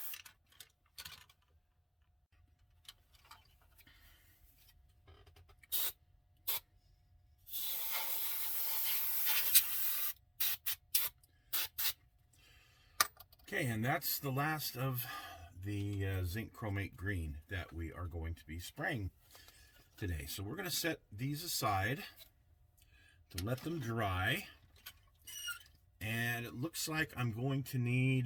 Okay, and that's the last of the zinc chromate green that we are going to be spraying today. So we're going to set these aside to let them dry, and it looks like I'm going to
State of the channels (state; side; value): identical; both; correlation 1.00